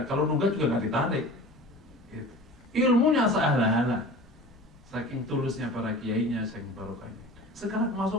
Kalau nunggak juga nggak ditarik. Gitu. Ilmunya sehala-hala. Saking tulusnya para kiainya, saking barokahnya. Sekarang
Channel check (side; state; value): both; normal; correlation 0.39